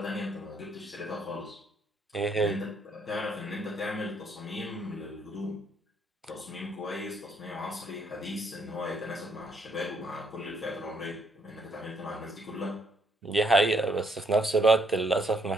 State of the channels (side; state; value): both; normal; correlation 0.70